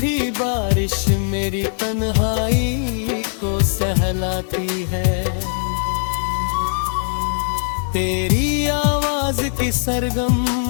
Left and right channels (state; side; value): silent; right; 64 dB below the other